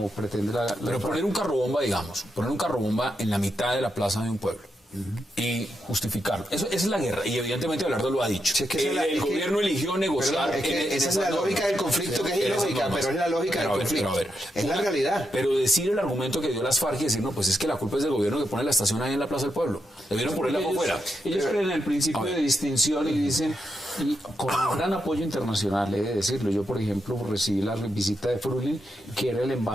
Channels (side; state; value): both; normal; correlation 0.84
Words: pretende la Pero poner un carrobomba, digamos, poner un carrobomba en la mitad de la plaza de un pueblo y justificarlo. Esa es la guerra, y evidentemente Abelardo lo ha dicho. Sí, es que el gobierno eligió negociar. Esa es la lógica del conflicto, que es ilógica, pero es la lógica del conflicto. Es la realidad. Pero decir el argumento que dio las FARC y decir, no, pues es que la culpa es del gobierno que pone la estación ahí en la Plaza del Pueblo. Debieron ponerla por fuera. Ellos creen en el principio de distinción y dicen, y con un gran apoyo internacional, he de decirlo. Yo, por ejemplo, recibí la visita de Frulin, que era el